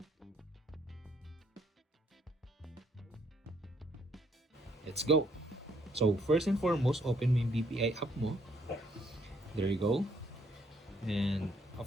Let's go! So first and foremost, open mo yung BPI app mo. There you go. And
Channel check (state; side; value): normal; both; correlation 0.68